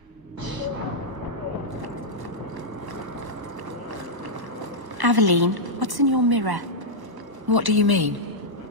Aveline, what's in your mirror? What do you mean?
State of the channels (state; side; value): late; left; 1.1 ms